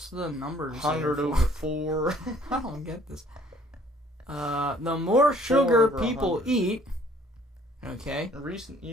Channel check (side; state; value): both; normal; correlation 0.59